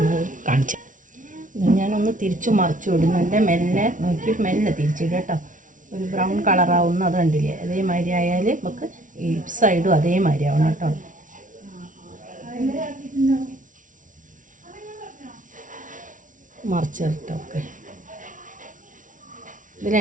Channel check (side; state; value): left; late; 0.38 ms